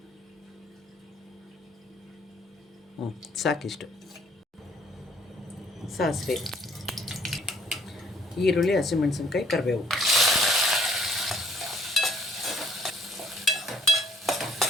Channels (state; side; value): normal; both; correlation 0.62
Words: ಸಾಕಿಷ್ಟು ಸಾಸಿವೆ, ಈರುಳ್ಳಿ, ಹಸಿಮೆಣಸಿನ್ಕಾಯಿ, ಕರಿಬೇವು.